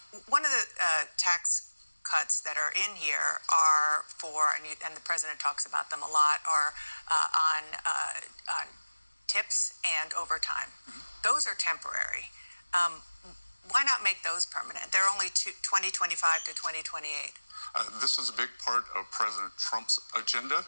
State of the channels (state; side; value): inverted; both; correlation -1.00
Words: One of the tax cuts that are in here are for, and the president talks about them a lot, are on tips and overtime. Mm-hmm. Those are temporary. Why not make those permanent? They're only 2025 to 2028. This is a big part of President Trump's agenda.